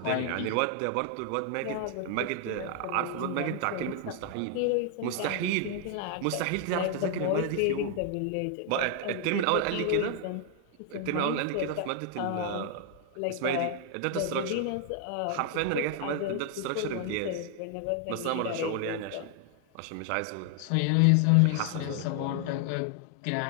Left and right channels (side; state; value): both; different; correlation 0.00